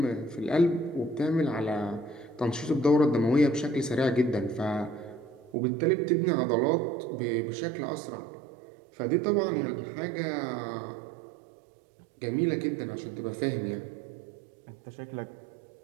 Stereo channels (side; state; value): left; drops out; at 5.6 s